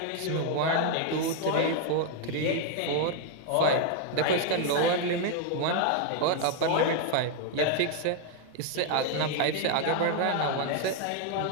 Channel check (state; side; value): different; both; correlation 0.00